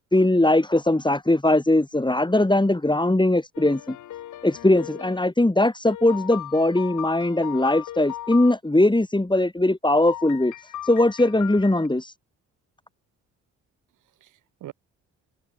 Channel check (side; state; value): both; normal; correlation 0.80